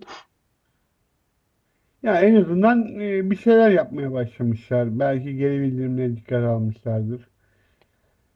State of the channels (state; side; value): identical; both; correlation 1.00